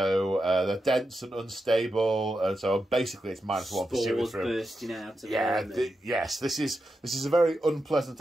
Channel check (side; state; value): both; normal; correlation 0.88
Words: they're dense and unstable, and so basically it's -1 for shooting through. Bursting out of them. Yes, this is a very unpleasant